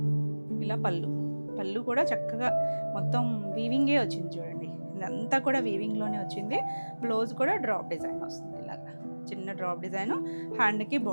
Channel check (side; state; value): both; inverted; correlation -1.00